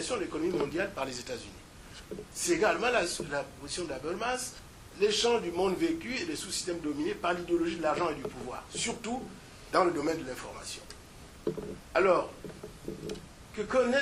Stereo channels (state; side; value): identical; both; correlation 1.00